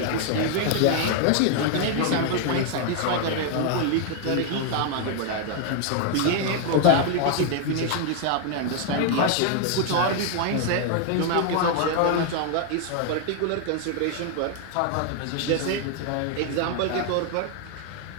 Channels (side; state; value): both; different; correlation 0.00